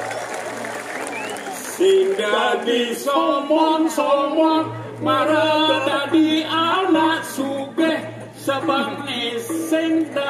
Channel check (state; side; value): identical; both; correlation 1.00